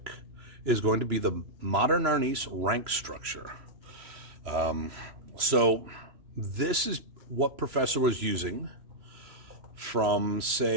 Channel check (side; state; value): left; late; 3.0 ms